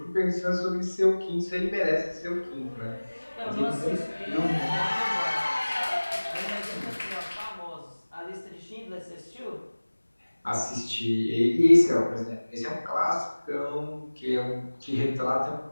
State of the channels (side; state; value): both; inverted; correlation -1.00